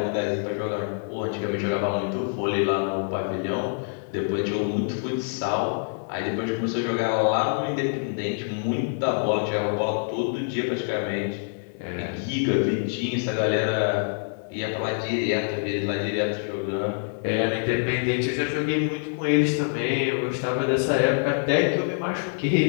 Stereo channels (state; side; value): silent; right; digital silence